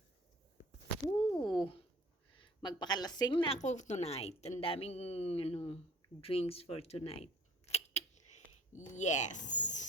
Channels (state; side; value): normal; both; correlation 0.52